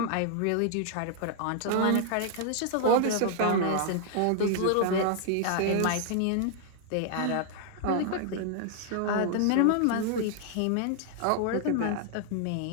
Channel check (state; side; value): different; both; correlation 0.00